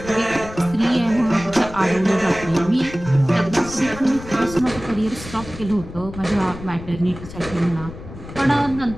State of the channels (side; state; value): left; noise; rumble, 14 dB below the sound